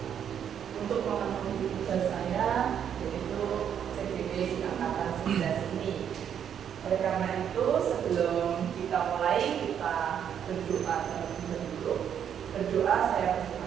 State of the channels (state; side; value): quieter; left; 8.8 dB